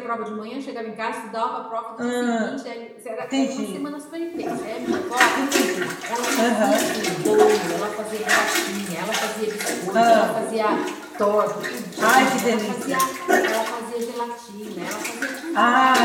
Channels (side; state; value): both; identical; correlation 1.00